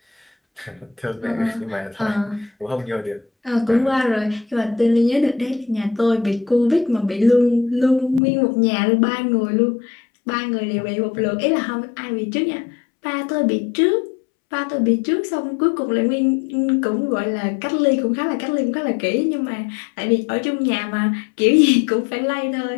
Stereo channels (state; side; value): drops out; right; at 8.2 s